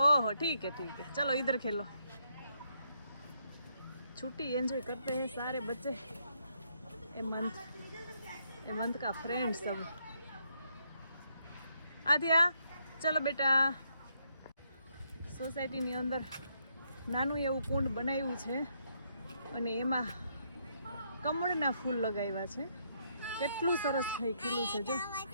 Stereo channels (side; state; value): both; inverted; correlation -0.75